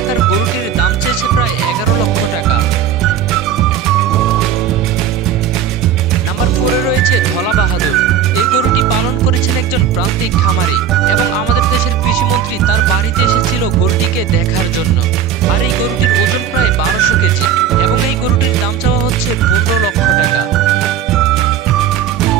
আকার গরুটির দাম চেয়েছে প্রায় 11 লক্ষ টাকা। নাম্বার 4-এ রয়েছে ধলা বাহাদুর। এই গরুটি পালন করেছেন একজন প্রান্তিক খামারি, এবং আমাদের দেশের কৃষিমন্ত্রী তার বাড়িতে এসেছিল গরুটিকে দেখার জন্য। আর এই গরুটির ওজন প্রায় 1200 কেজি, এবং এই গরুটির দাম চাওয়া হচ্ছে 15 লক্ষ টাকা।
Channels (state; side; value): quieter; left; 8.4 dB